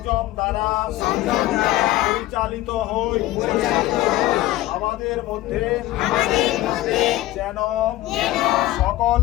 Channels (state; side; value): quieter; right; 16.0 dB